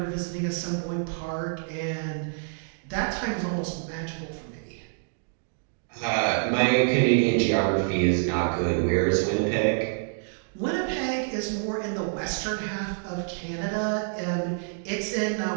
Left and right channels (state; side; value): silent; left; digital silence